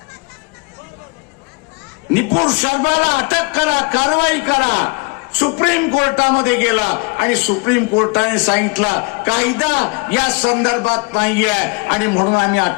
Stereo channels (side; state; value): right; quieter; 28.9 dB